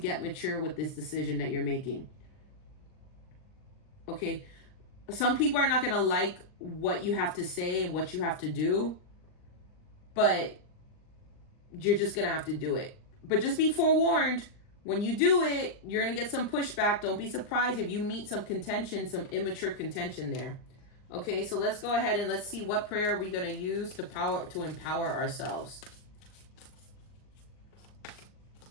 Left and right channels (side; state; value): right; late; 39 ms